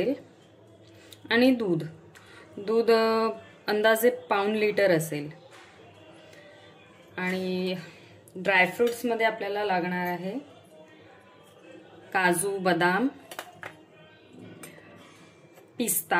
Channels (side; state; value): both; identical; correlation 1.00